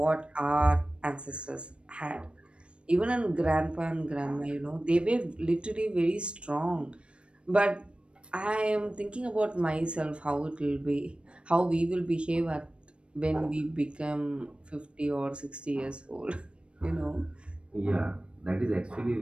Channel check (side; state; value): left; late; 0.058 ms